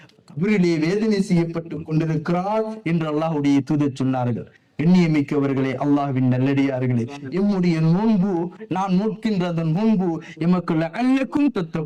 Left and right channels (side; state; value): both; identical; correlation 1.00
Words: கபிரிலே வேதனை செய்யப்பட்டுக் கொண்டிருக்கிறார் என்று அல்லாஹ்வுடைய தூதர் சொன்னார்கள். எண்ணியமிக்கவர்களே, அல்லாஹ்வின் நல்லடியார்களே, எம்முடைய நோன்பு, நான் நோக்கின்றதன் நோன்பு எமக்கு லஅல்லக்கும்